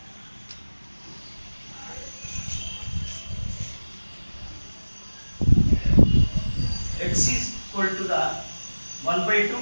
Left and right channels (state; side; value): inverted; both; correlation -1.00